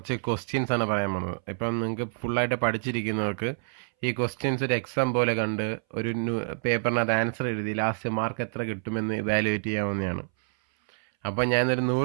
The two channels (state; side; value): silent; left; 60 dB below the other